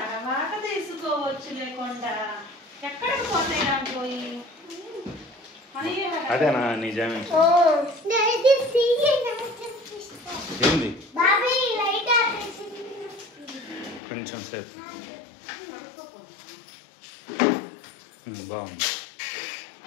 తీసుకోవచ్చు లేకుండా ఎక్కడికి పోతాయి దాంట్లో. అదేనా నిజమే ఏంది కొంచెం సేపు బాగుంది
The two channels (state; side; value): drops out; right; at 14.0 s